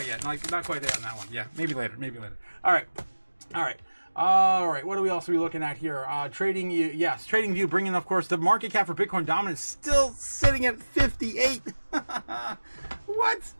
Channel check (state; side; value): inverted; both; correlation -1.00